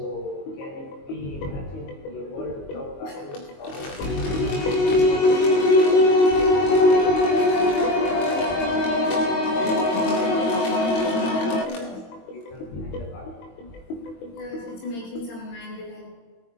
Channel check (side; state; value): right; late; 22 ms